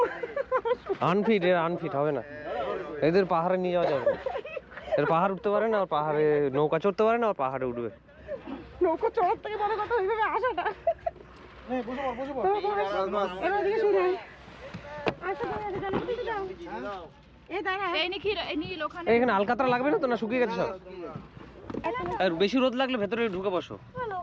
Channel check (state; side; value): identical; both; correlation 1.00